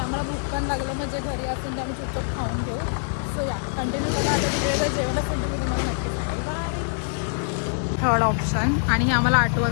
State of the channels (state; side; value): silent; right; digital silence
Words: आम्हाला भूक पण लागलं, म्हणजे घरी असेल तर आम्ही चुपचाप खाऊन घेऊ. सो या, कंटिन्यू बघा. आता तिकडे जर जेवण असेल तर मी तुम्हाला नक्की सांगेल. बाय. थर्ड ऑप्शन, आणि हे आम्हाला